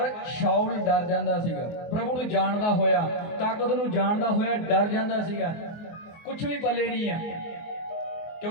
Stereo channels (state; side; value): late; right; 24 ms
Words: ਸ਼ਾਉਲ ਡਰ ਜਾਂਦਾ ਸੀਗਾ। ਪ੍ਰਭੂ ਨੂੰ ਜਾਣਦਾ ਹੋਇਆ, ਤਾਕਤ ਨੂੰ ਜਾਣਦਾ ਹੋਇਆ ਡਰ ਜਾਂਦਾ ਸੀਗਾ। ਕੁਛ ਵੀ ਪੱਲੇ ਨਹੀਂ ਆ,